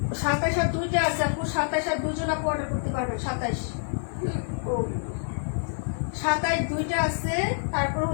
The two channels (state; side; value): silent; right; 60 dB below the other